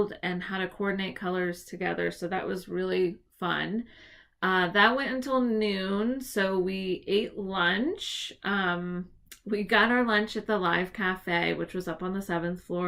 and how to coordinate colors together. So that was really fun. That went until noon. So we ate lunch. We got our lunch at the Live Cafe, which was up on the 7th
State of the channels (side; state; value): both; identical; correlation 1.00